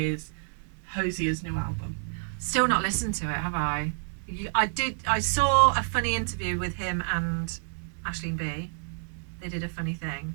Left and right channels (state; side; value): silent; left; digital silence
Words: Hosier's new album. Still not listened to it, have I? I saw a funny interview with him and Aisling B. They did a funny thing.